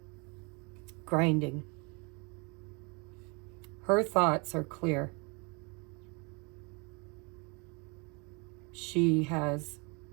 Grinding. Her thoughts are clear. She has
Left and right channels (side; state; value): left; quieter; 31.2 dB